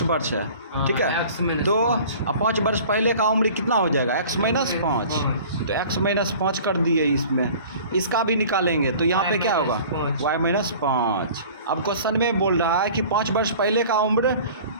वर्ष है, ठीक है। तो अब 5 वर्ष पहले का उम्र कितना हो जाएगा? x minus 5। तो x माइनस 5 कर दिए इसमें, इसका भी निकालेंगे। तो यहाँ पे क्या होगा? y minus 5। अब क्वेश्चन में बोल रहा है कि 5 वर्ष पहले का उम्र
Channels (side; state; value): both; inverted; correlation -0.45